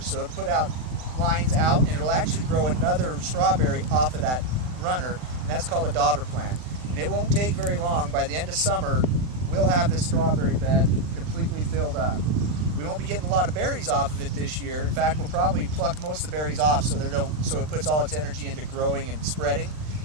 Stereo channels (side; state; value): left; late; 39 ms